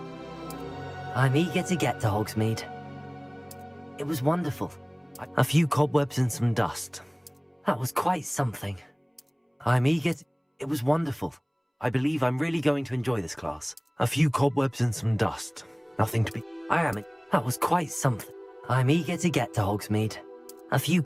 I'm eager to get to Hogsmeade. It was wonderful. A few cobwebs and some dust. That was quite something. I'm eager to... It was wonderful. I believe I'm really going to enjoy this class. A few cobwebs and some dust. Nothing to be... That was quite something. I'm eager to get to Hogsmeade. A few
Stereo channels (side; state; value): both; identical; correlation 1.00